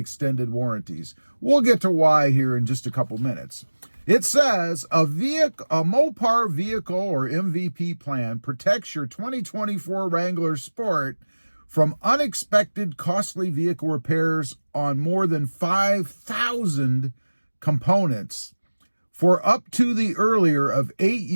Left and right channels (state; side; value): inverted; both; correlation -1.00